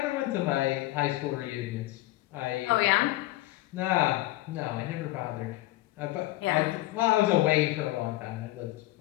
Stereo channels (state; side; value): quieter; right; 17.7 dB